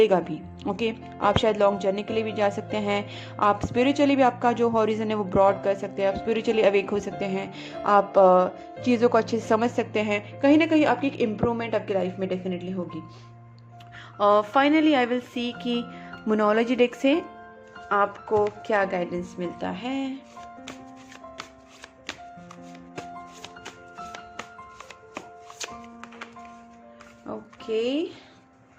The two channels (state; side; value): identical; both; correlation 1.00